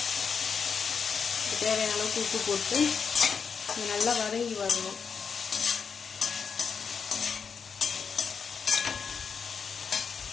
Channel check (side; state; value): right; quieter; 6.1 dB